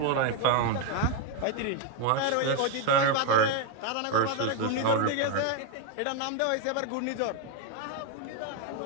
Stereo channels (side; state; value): both; different; correlation 0.01